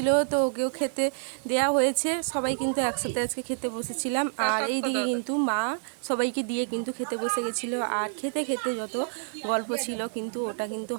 তো ওকেও খেতে দেয়া হয়েছে। সবাই কিন্তু একসাথে আজকে খেতে বসেছিলাম। আর এই দিকে কিন্তু মা সবাইকে দিয়ে কিন্তু খেতে বসে গেছিলো। আর খেতে খেতে যত গল্প ছিল কিন্তু ওটা কিন্তু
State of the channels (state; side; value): silent; left; 59 dB below the other